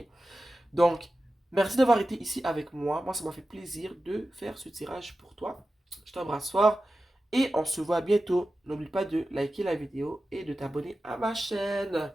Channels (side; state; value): both; normal; correlation 0.93